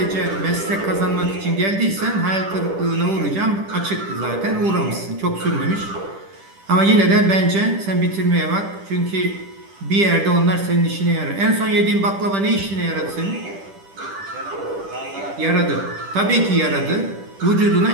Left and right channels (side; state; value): left; late; 10 ms